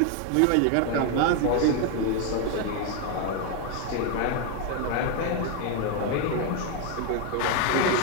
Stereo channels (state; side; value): different; both; correlation 0.01